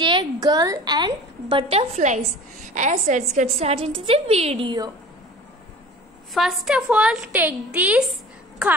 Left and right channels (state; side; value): normal; both; correlation 0.42